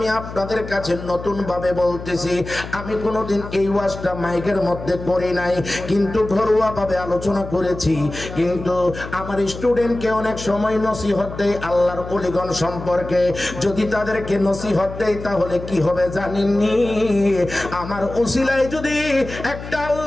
আপনাদের কাছে নতুন ভাবে বলতেছি। আমি কোনোদিন এই ওয়াজটা মাইকের মধ্যে করি নাই, কিন্তু ঘরোয়া ভাবে আলোচনা করেছি। কিন্তু আমার স্টুডেন্টকে অনেক সময় নসিহত দেয় আল্লাহর ওলিগণ সম্পর্কে। যদি তাদেরকে নসিহত দেয় তাহলে কি হবে জানেননি? আমার উসিলায় যদি একটা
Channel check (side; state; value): left; noise; hum, 11 dB below the sound